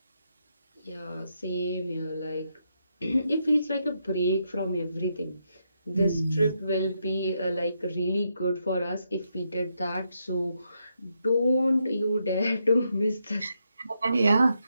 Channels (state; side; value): inverted; both; correlation -0.81